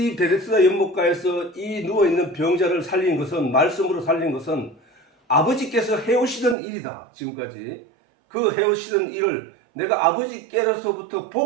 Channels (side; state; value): left; drops out; at 6.6 s